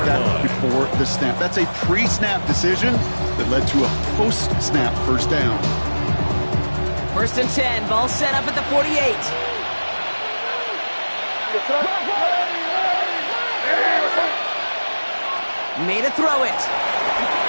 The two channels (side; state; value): both; inverted; correlation -1.00